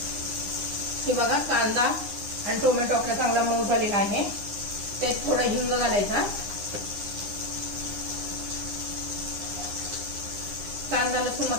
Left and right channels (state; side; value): late; left; 9.8 ms